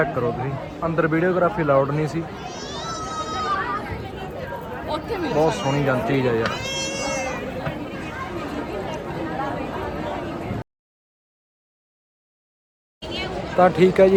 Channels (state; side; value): identical; both; correlation 1.00